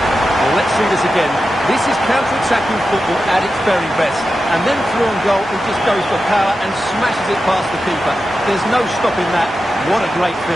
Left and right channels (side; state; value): both; normal; correlation 0.91